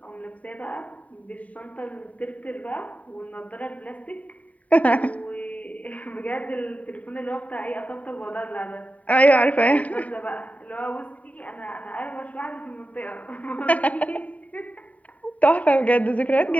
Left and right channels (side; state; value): right; late; 0.069 ms